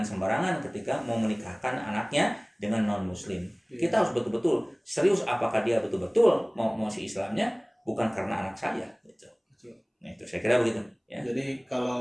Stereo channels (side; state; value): both; identical; correlation 1.00